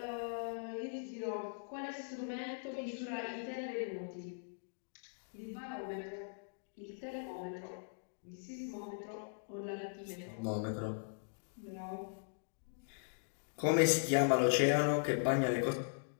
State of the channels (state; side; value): silent; right; digital silence